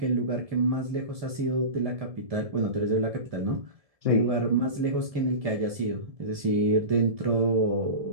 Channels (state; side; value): late; left; 1.7 ms